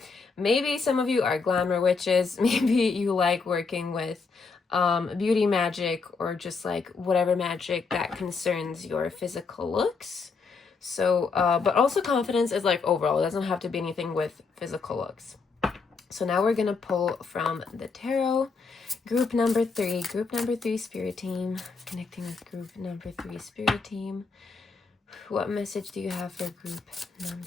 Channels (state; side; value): quieter; right; 4.7 dB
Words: Maybe some of you are glamour witches. Maybe you like working with beauty magic or just like whatever magic that concerns your physical looks. So, but also confidence is like overall. It doesn't have to be anything with physical looks. So now we're going to pull from the tarot. Group number 3, Spirit Team, connecting with group number 3, Spirit Team. What message do you have for group